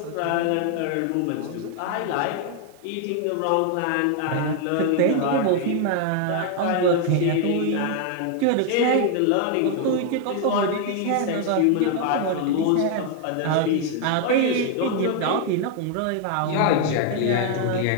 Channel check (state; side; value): different; both; correlation 0.00